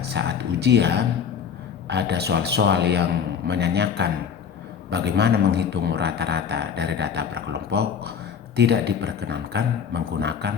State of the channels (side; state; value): right; quieter; 7.2 dB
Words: saat ujian ada soal-soal yang menanyakan bagaimana menghitung rata-rata dari data berkelompok, tidak diperkenankan